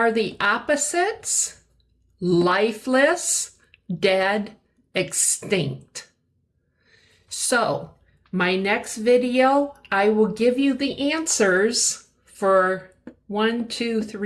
the opposites? Lifeless, dead, extinct. So, my next video, I will give you the answers for 1, 2,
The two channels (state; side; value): identical; both; correlation 1.00